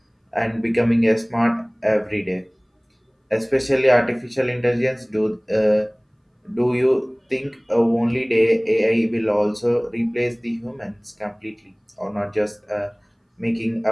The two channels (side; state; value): both; identical; correlation 1.00